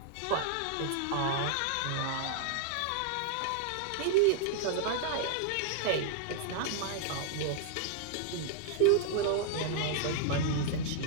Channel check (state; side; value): different; both; correlation -0.01